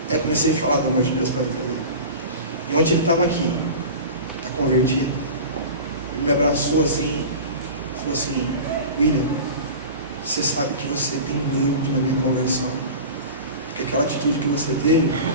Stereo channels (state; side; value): inverted; both; correlation -0.34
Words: Aí eu comecei a falar do amor de Deus para a vida dele. E ontem ele estava aqui, está convertido. Ele me abraçou assim, falou assim: William, você sabe que você tem muito na minha conversão, porque aquela atitude que você teve